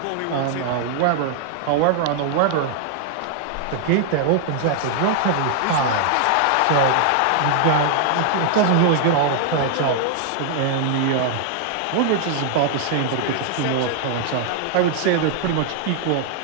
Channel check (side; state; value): both; different; correlation 0.00